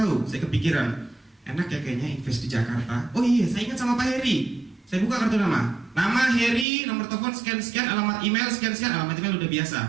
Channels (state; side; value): drops out; left; at 6.7 s